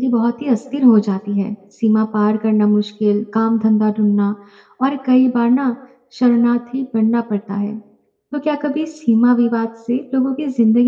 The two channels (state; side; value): identical; both; correlation 1.00